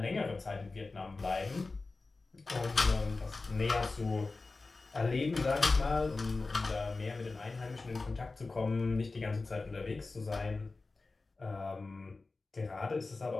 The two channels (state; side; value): quieter; right; 3.6 dB